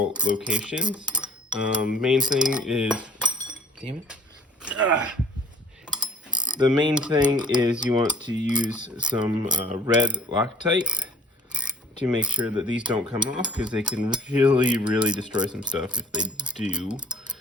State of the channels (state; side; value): normal; both; correlation 0.53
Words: locations. Main thing is, damn it. The main thing is you want to use some red Loctite to make sure that these don't come off, because they can really destroy some stuff if they do.